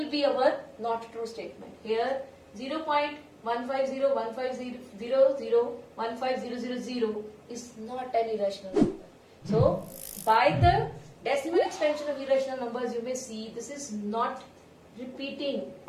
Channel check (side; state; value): both; identical; correlation 1.00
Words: be our not true statement. Here 0.15015001500 is not an irrational number. So by the decimal expansion of irrational numbers, you may see this is not repeating